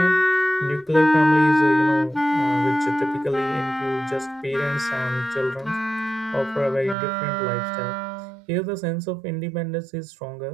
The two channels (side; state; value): left; drops out; at 7.0 s